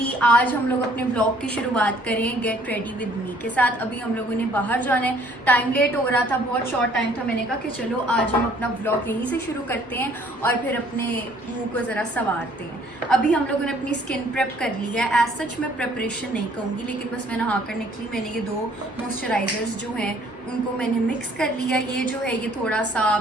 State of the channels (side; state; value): both; normal; correlation 0.59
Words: आज हम लोग अपने ब्लॉग की शुरुआत करें गेट रेडी विद मी के साथ। अभी हम लोगों ने बाहर जाना है, टाइम लेट हो रहा था, बहुत शॉर्ट टाइम था। मैंने कहा कि चलो आज हम अपना ब्लॉग यहीं से शुरू करते हैं और फिर अपने मुंह को ज़रा संवारते हैं। अभी हम लोगों ने अपनी स्किन प्रेप कर ली है। एज सच मैं प्रेपरेशन नहीं कहूँगी, लेकिन बस मैं नहा कर निकली। मैंने ये 2 मॉइस्चराइजर्स जो हैं उनको मैंने मिक्स कर लिया। ये जो है ये थोड़ा सा